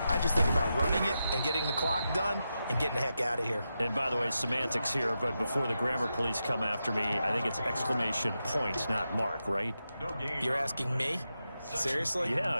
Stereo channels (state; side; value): inverted; both; correlation -0.88